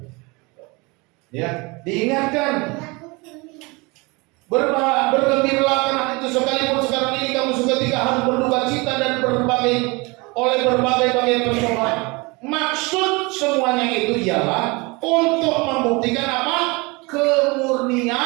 Ya, diingatkan. Bergembiralah karena itu sekalipun sekarang ini kamu seketika harus berduka cita dan oleh berbagai pencobaan. Maksud semuanya itu ialah untuk membuktikan apa?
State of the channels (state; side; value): quieter; left; 26.4 dB